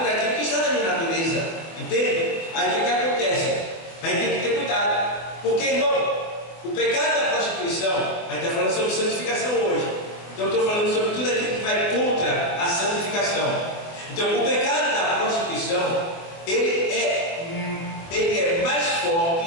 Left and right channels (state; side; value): late; right; 23 ms